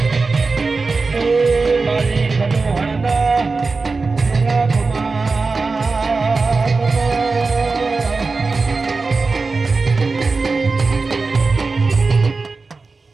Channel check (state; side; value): quieter; left; 4.0 dB